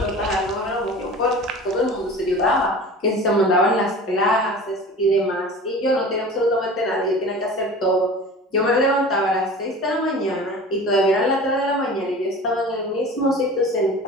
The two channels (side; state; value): both; normal; correlation 0.38